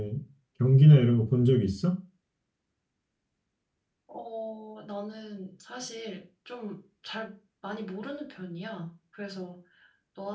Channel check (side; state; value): both; identical; correlation 1.00